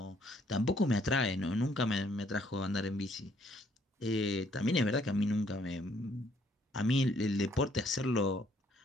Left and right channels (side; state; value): both; normal; correlation 0.66